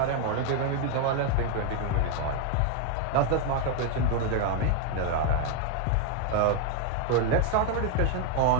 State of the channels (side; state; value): both; different; correlation 0.01